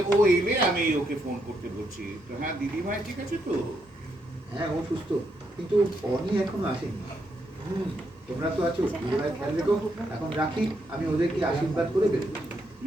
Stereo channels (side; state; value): both; normal; correlation 0.78